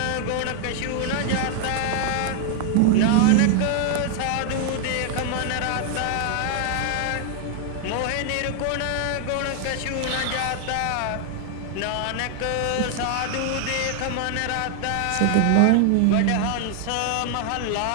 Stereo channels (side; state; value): both; different; correlation 0.00